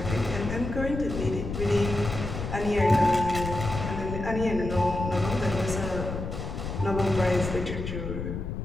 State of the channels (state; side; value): noise; left; rumble, 5 dB below the sound